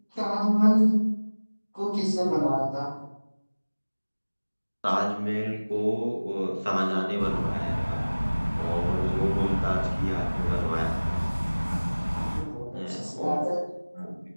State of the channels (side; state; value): both; inverted; correlation -1.00